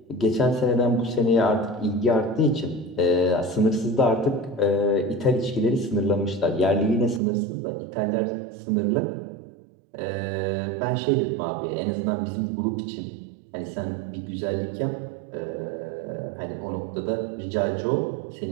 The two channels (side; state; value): left; drops out; at 7.2 s